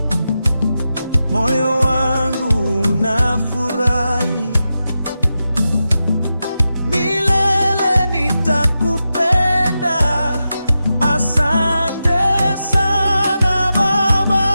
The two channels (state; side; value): inverted; both; correlation -0.90